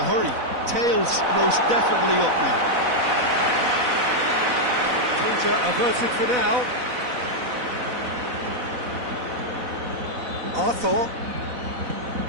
hurry. Tails most definitely up now. Danger averted for now. Arthur.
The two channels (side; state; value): left; late; 4.0 ms